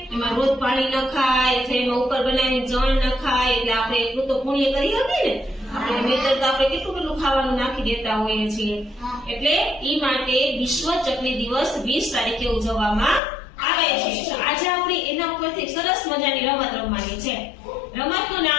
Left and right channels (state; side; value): drops out; right; at 13.2 s